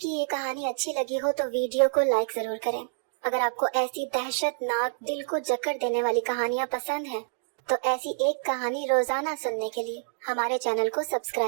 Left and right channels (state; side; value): silent; left; digital silence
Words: ये कहानी अच्छी लगी हो तो वीडियो को लाइक जरूर करें। अगर आपको ऐसी दहशतनाक दिल को जकड़ देने वाली कहानियाँ पसंद हैं तो ऐसी एक कहानी रोजाना सुनने के लिए हमारे चैनल को